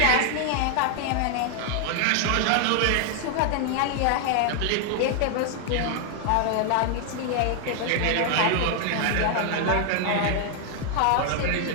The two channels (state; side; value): different; both; correlation 0.00